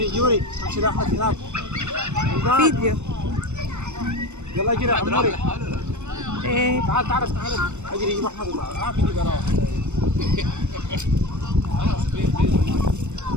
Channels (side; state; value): left; late; 0.83 ms